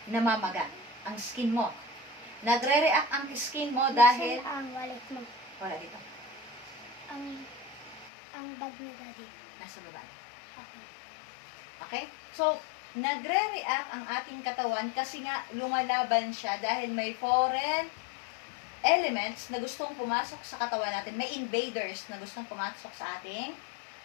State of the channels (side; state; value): right; drops out; at 8.1 s